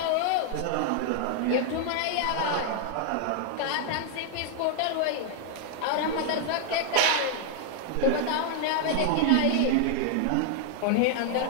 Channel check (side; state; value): both; different; correlation 0.00